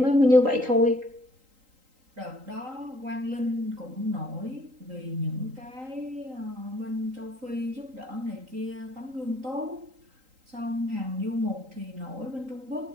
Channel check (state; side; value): late; left; 3.8 ms